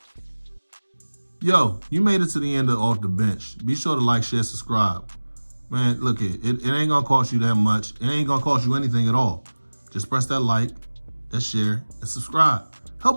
Yo, you made it to the end of Off the Bench. Be sure to like, share, subscribe. Man, look, it ain't gonna cost you that much. It ain't gonna cost you anything at all. Just press that like, that share, and subscribe.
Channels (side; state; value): both; inverted; correlation -1.00